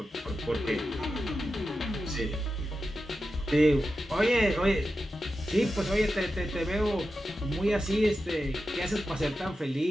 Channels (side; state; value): both; normal; correlation 0.91